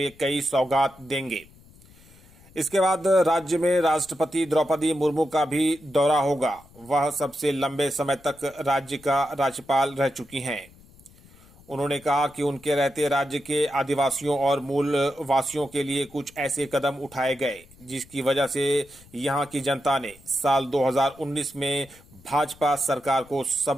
कई सौगात देंगे। इसके बाद राज्य में राष्ट्रपति द्रौपदी मुर्मू का भी दौरा होगा। वह सबसे लंबे समय तक राज्य का राज्यपाल रह चुकी हैं। उन्होंने कहा कि उनके रहते राज्य के आदिवासियों और मूल वासियों के लिए कुछ ऐसे कदम उठाए गए जिसकी वजह से यहां की जनता ने साल 2019 में भाजपा सरकार को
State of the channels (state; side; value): noise; left; rumble, 25 dB below the sound